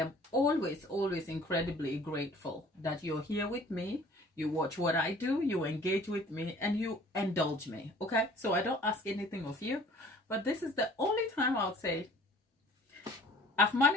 always, always incredibly grateful that you're here with me. You watch what I do, you engage with me, and you indulge me, okay? So I don't ask anything of you. But this is the only time I'll say, I've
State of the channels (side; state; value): both; normal; correlation 0.51